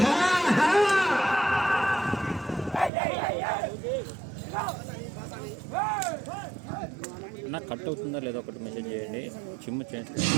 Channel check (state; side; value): drops out; left; at 2.9 s